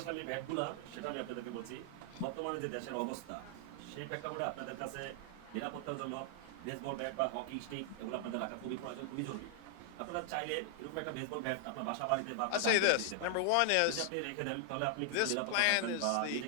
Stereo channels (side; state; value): both; different; correlation 0.00